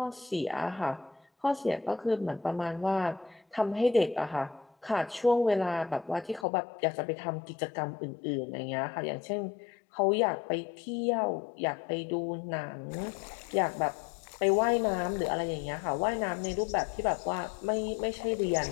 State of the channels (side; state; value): right; drops out; at 6.5 s